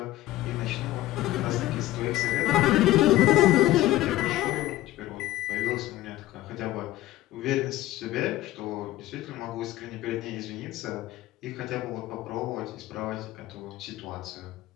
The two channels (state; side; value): quieter; right; 15.8 dB